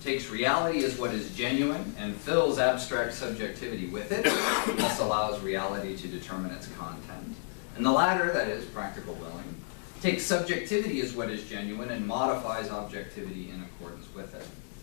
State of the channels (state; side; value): silent; right; digital silence